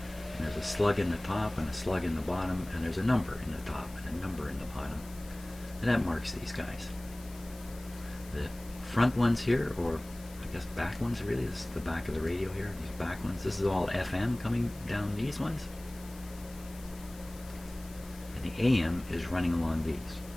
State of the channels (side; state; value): left; noise; hiss, 20 dB below the sound